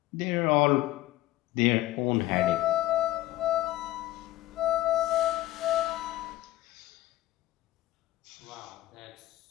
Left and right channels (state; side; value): quieter; right; 15.9 dB